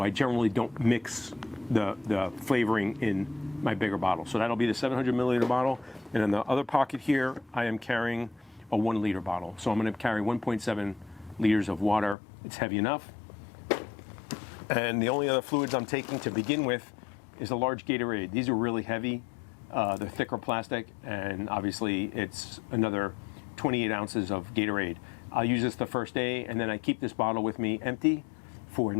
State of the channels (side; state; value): right; drops out; at 12.2 s